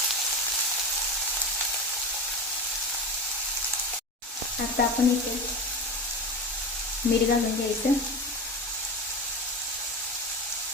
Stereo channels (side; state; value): both; normal; correlation 0.25